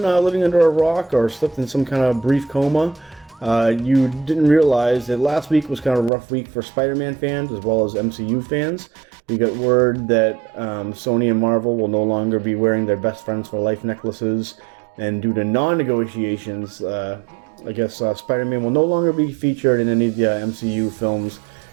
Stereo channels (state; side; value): drops out; left; at 6.1 s